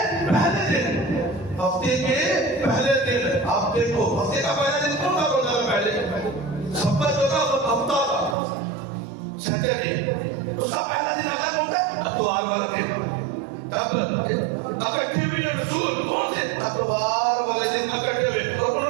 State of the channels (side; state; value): left; drops out; at 8.3 s